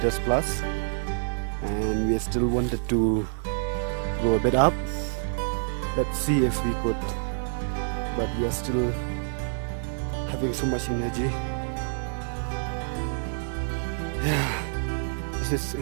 plus, and we still wanted to go a bit up. Let's see if we could, but we are still having so much energy. Yeah, this is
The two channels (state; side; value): silent; left; 60 dB below the other